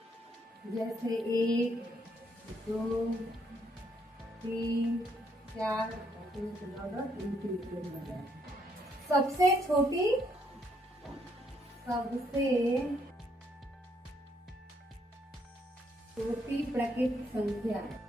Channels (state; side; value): normal; both; correlation 0.72